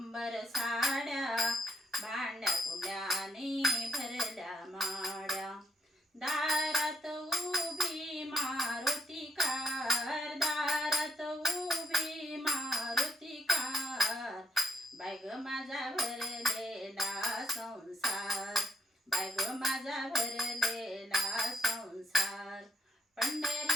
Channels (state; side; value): normal; both; correlation 0.74